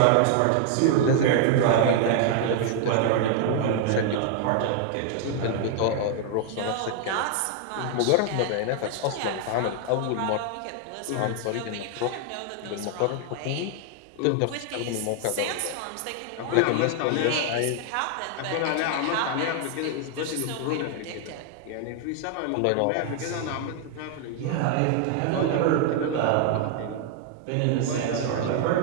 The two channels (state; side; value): different; both; correlation 0.00